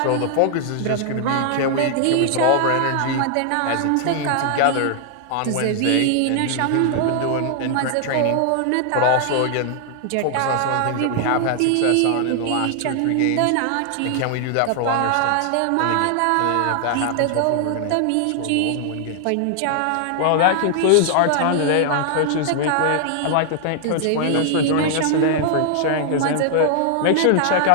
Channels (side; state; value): both; different; correlation 0.00